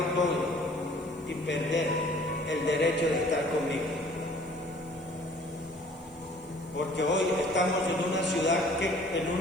todo y perder el derecho de estar conmigo? Porque hoy estamos en una ciudad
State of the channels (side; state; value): right; noise; hiss, 28 dB below the sound